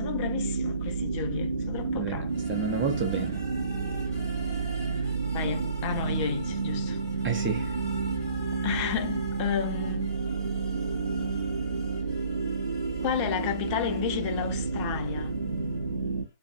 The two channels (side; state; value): both; inverted; correlation -0.55